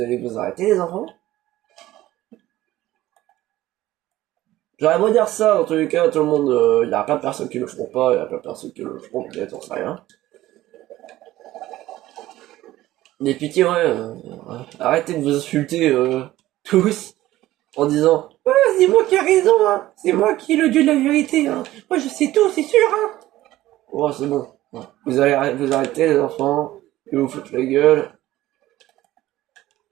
allez vous arrêter, les enfants. J'aurais beau dire ça, dans tous les cas, tout le monde, il y a plein de personnes qui le feront pas, il y a plein de personnes qui le feront peut-être, on sait rien. Mais pitié, ouais, arrêtez de vous insulter tous en disant «Ouais, c'est moi qui ai raison, hein, c'est moi qui ai le dieu de la vérité, hein, moi je sais tout, c'est sûr, hein.» Oh, c'est bon. Ouais. Vous allez vous arrêter, les enfants, et vous foutre la gueule.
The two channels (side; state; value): left; quieter; 15.6 dB